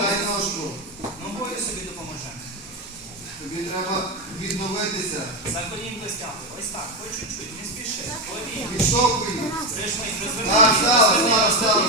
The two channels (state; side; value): normal; both; correlation 0.12